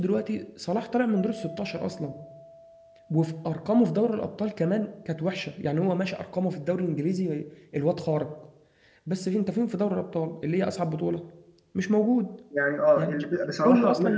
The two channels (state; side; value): identical; both; correlation 1.00